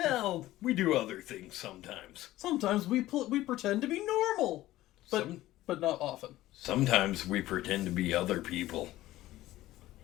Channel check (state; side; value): quieter; right; 15.8 dB